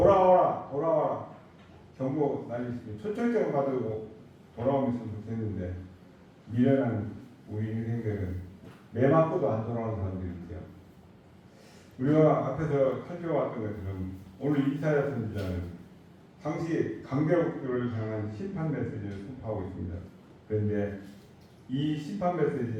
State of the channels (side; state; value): both; identical; correlation 1.00